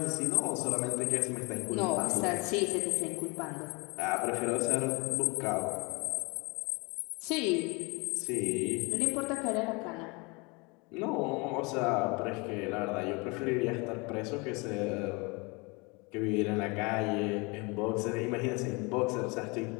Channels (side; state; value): right; quieter; 28.2 dB